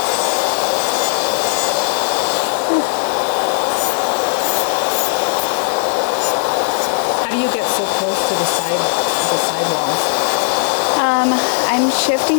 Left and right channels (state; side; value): silent; right; 66 dB below the other